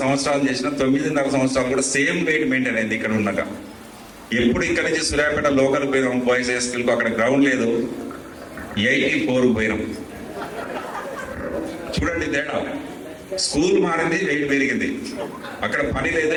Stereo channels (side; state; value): both; identical; correlation 1.00